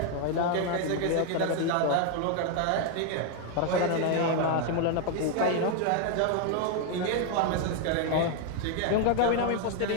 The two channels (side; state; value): both; different; correlation 0.01